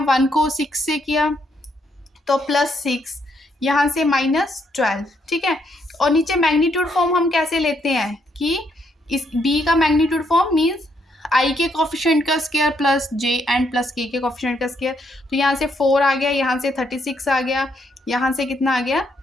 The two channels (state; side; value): normal; both; correlation 0.74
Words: 1 को 6 से किया तो +6, यहाँ से -12। ठीक है, और नीचे मैग्नीट्यूड फॉर्म हम कैसे लेते हैं कि इस b का मैग्नीट्यूड फॉर्म मीन्स i के कोफिशिएंट का square plus j and plus k के कोफिशिएंट का स्क्वायर। तो यहाँ से 4 आ गया, यहाँ से 36 आ गया, यहाँ से कितना आ गया